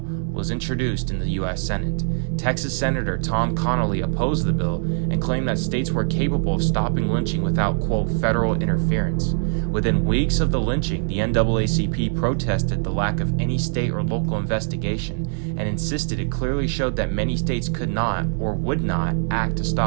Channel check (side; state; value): left; silent; 64 dB below the other